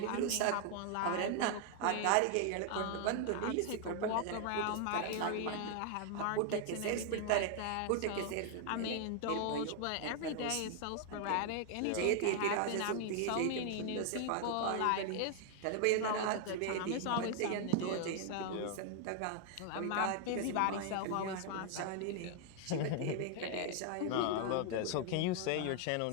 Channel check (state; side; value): different; both; correlation 0.00